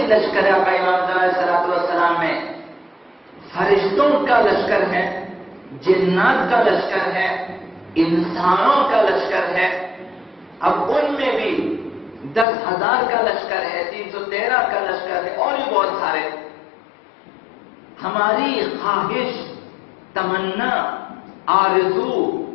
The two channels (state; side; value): drops out; right; at 12.5 s